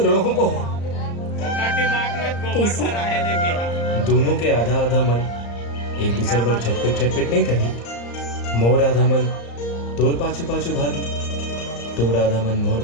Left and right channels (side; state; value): right; late; 34 ms